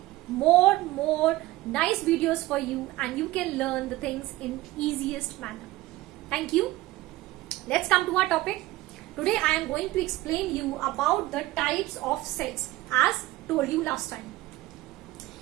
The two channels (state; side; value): quieter; left; 17.9 dB